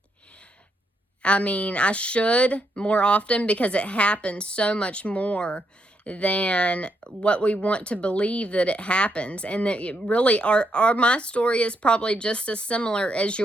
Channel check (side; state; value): both; normal; correlation 0.79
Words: I mean, I should more often because it happens so much more than what we want to believe that it happens. And that it really my story is probably just as similar as